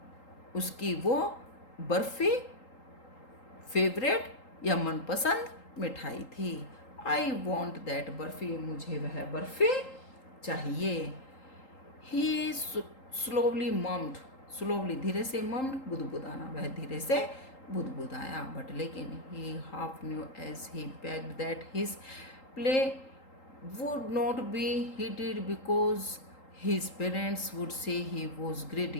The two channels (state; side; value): late; right; 3.8 ms